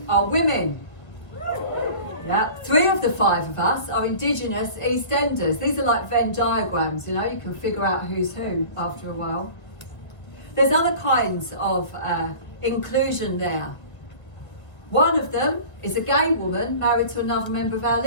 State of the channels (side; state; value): right; late; 1.4 ms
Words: are women. Yeah, 3 of the 5 of us are Indigenous East Enders. These are like Venn diagrams, you know, you can figure out who's who after a while. There's other kinds of inclusion there. One of them is a gay woman married to another member of our